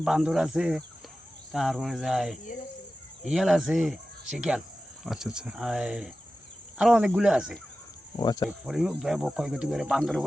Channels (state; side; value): normal; both; correlation 0.94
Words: বান্দর আছে, তারপরে যায় ইয়াল আছে, শিকাল, আচ্ছা আচ্ছা, আরো অনেকগুলো আছে। ও আচ্ছা, ক্ষয়ক্ষতি করে, বান্দরের